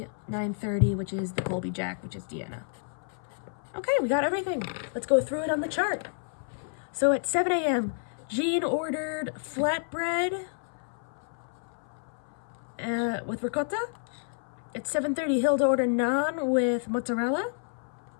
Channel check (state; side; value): silent; right; 56 dB below the other